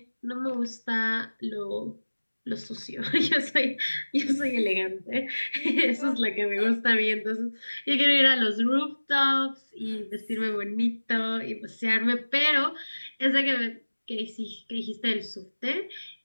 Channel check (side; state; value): both; inverted; correlation -1.00